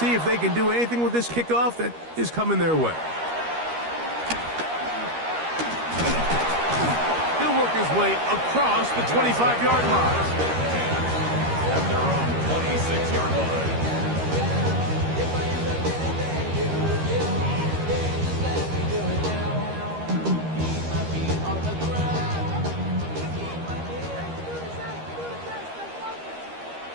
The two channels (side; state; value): left; late; 13 ms